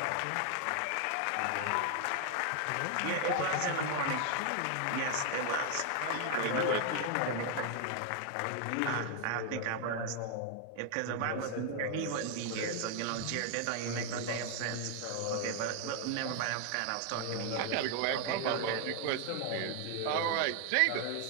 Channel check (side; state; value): both; different; correlation 0.00